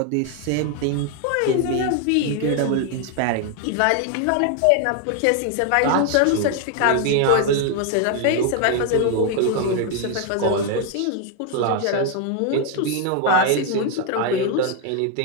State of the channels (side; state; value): both; different; correlation 0.01